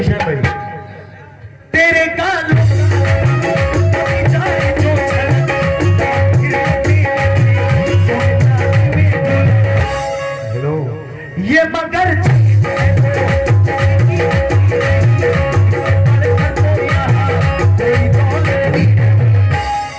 शान भाई। तेरे कानों हेलो, ये मगर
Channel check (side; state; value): both; identical; correlation 1.00